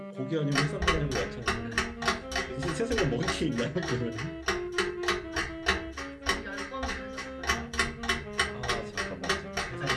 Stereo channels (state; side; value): identical; both; correlation 1.00